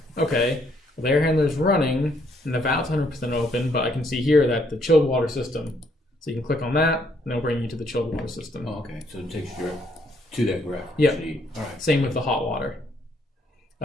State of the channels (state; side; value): normal; both; correlation 0.70